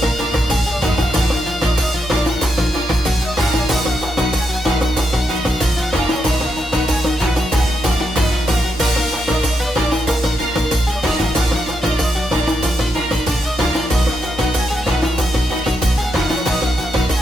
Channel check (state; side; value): normal; both; correlation 0.82